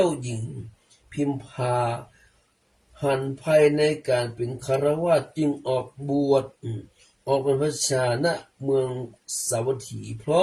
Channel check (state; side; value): identical; both; correlation 1.00